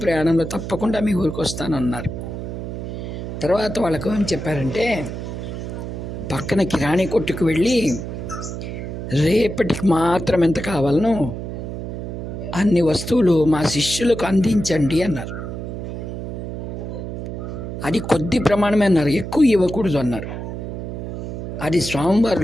ప్రయాణంలో తప్పకుండా మీ ఊరికి వస్తానన్నారు. తర్వాత వాళ్ళకు ఏం చెప్పారంటే, పక్కన కిరాణీ కొట్టుకు వెళ్ళి రేపటికి మాత్రం ఎంత కావాలనో అన్ని వస్తువులు మా శిష్యులకు అందించండి అన్నారు. అది కొద్ది ప్రమాణమే అన్నారు, ఎక్కువ ఇవ్వకూడదు అన్నారు. అది స్వామివారు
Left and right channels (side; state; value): right; noise; hum, 6 dB below the sound